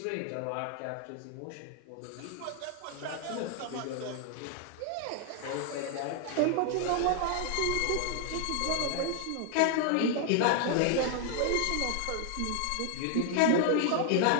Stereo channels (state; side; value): different; both; correlation 0.00